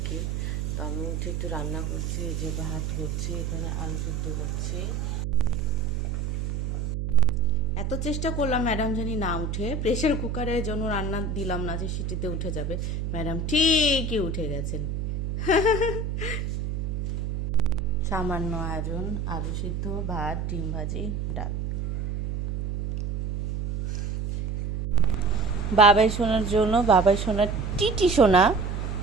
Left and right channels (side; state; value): right; noise; hum, 2 dB below the sound